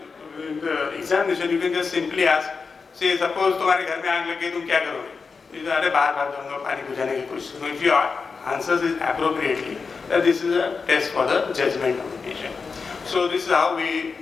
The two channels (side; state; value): right; quieter; 4.9 dB